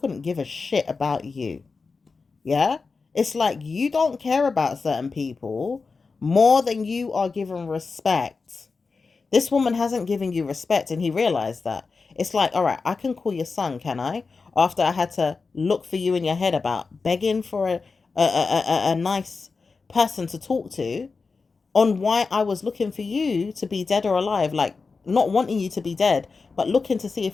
give a shit about you? Yeah? It's like you don't care about certain people more than you are given respect. This woman hasn't given you respect, and he realized that. It's like, all right, I can call your son, can I? After I had to look for you in your head about begging for a nice person to talk to, on why I was looking for you to be dead or alive, like not wanting you to be dead, but looking to see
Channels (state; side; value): quieter; right; 4.5 dB